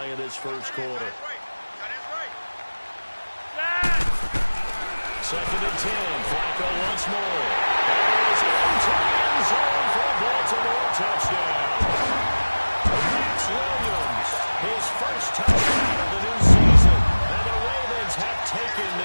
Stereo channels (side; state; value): both; inverted; correlation -1.00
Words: of this first quarter. 2nd and 10. Flacco once more. That is into the end zone for a Baltimore touchdown. Max Williams, his first touchdown of the new season. And the Ravens have taken